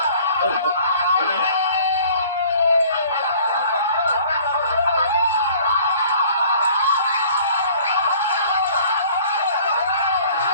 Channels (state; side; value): inverted; both; correlation -0.52